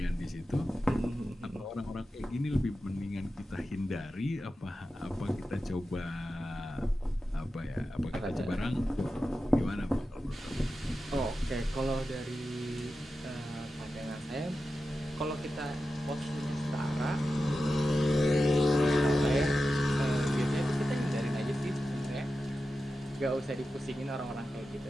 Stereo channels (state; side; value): normal; both; correlation 0.92